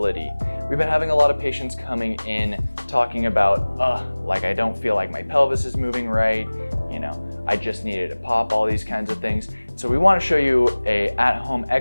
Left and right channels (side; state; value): both; inverted; correlation -1.00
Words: We've been having a lot of patients coming in talking about, like I don't feel like my pelvis is moving right, I just needed to pop, all these kinds of things. So we want to show you a at-home